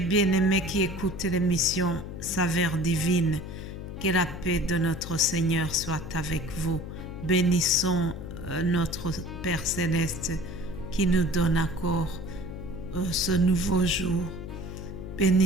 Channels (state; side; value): noise; left; hum, 9 dB below the sound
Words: qui écoutent l'émission Saveurs divines. Que la paix de notre Seigneur soit avec vous. Bénissons notre Père Céleste qui nous donne encore ce nouveau jour.